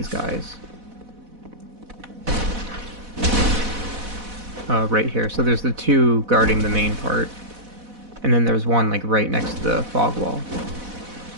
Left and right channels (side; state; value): left; late; 4.1 ms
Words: guys. Right here. So there's the 2 guarding the main part. And then there's one, like, right next to the fog wall.